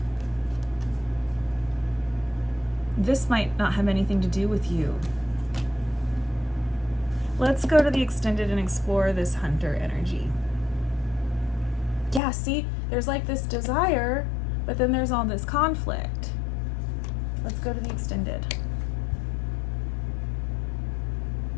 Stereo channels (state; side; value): drops out; right; at 12.2 s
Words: This might not have anything to do with you. Let's go to the extended and explore this hunter energy. Yeah, see, there's like this desire, but then there's all this conflict. Let's go to the extended.